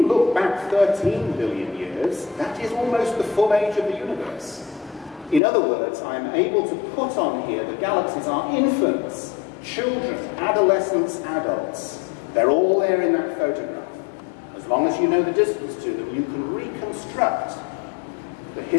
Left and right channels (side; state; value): right; drops out; at 5.4 s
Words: look back 13 billion years, that is almost the full age of the universe. In other words, I am able to put on here the galaxies are infants, children, adolescents, adults. They're all there in that photograph. As long as you know the distance to them, you can reconstruct the